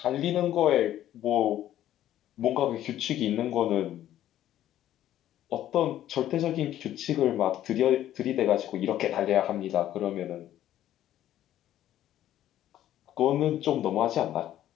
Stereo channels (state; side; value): quieter; right; 12.4 dB